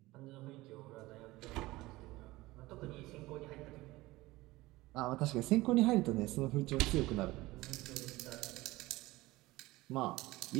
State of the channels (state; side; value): quieter; left; 19.4 dB